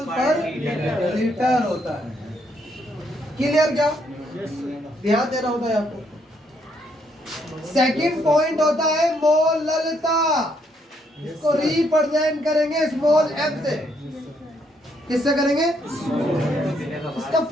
पर लीटर होता है। क्लियर क्या? ध्यान देना होता है आपको। सेकंड पॉइंट होता है मोललता। इसको रिप्रेजेंट करेंगे स्मॉल m से। किससे करेंगे? इसका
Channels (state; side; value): normal; both; correlation 0.73